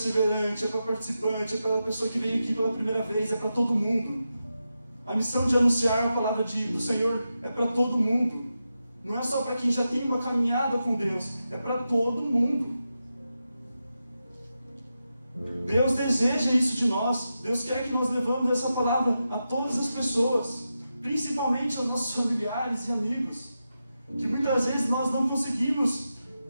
é para participante, é para a pessoa que veio aqui pela primeira vez, é para todo mundo. A missão de anunciar a palavra do Senhor é para todo mundo. Não é só para quem já tem uma caminhada com Deus, é para todo mundo. Deus deseja isso de nós. Deus quer que nós levamos essa palavra a todas as pessoas, principalmente aos nossos familiares e amigos, que muitas vezes nós não conseguimos,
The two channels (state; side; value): inverted; both; correlation -0.89